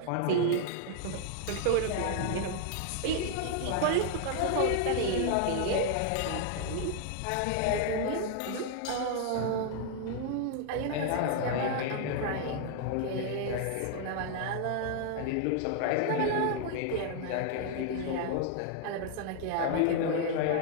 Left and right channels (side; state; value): both; different; correlation 0.00